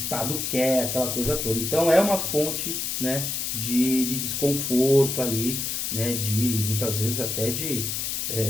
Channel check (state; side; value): noise; left; hiss, 2 dB below the sound